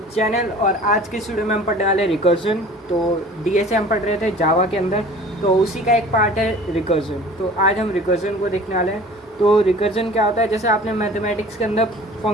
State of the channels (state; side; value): normal; both; correlation 0.45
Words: channel. और आज की वीडियो में हम पढ़ने वाले रिकर्जन। तो डीएस हम पढ़ रहे थे जावा के अंदर, तो उसी का एक पार्ट है रिकर्जन। तो आज हम रिकर्जन को देखने वाले हैं। तो रिकर्जन क्या होता है, जैसे आपने मैथमेटिक्स के अंदर